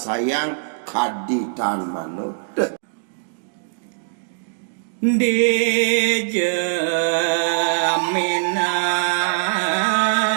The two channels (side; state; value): left; silent; digital silence